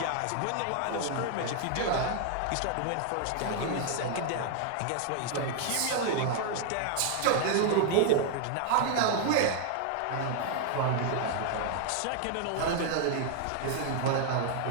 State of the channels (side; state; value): both; different; correlation 0.00